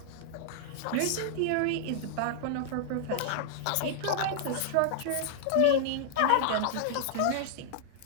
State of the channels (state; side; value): different; both; correlation -0.01